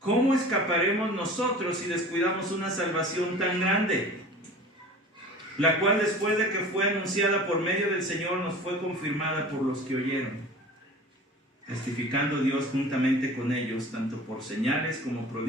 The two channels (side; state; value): both; normal; correlation 0.40